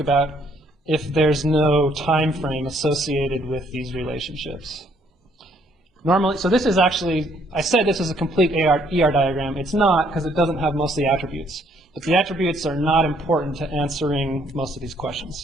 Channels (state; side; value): normal; both; correlation 0.66